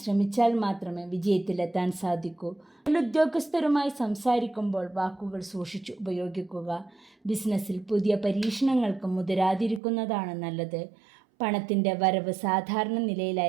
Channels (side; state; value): left; drops out; at 9.8 s